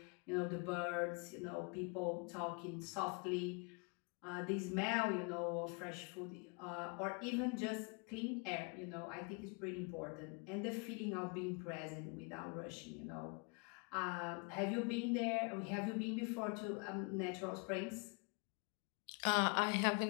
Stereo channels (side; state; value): right; quieter; 34.0 dB